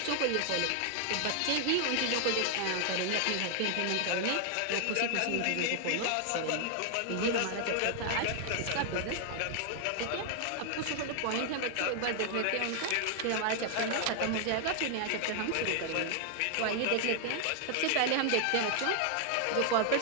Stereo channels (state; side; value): different; both; correlation 0.00